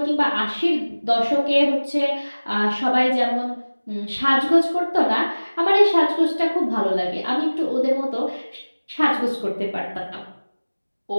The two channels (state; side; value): inverted; both; correlation -1.00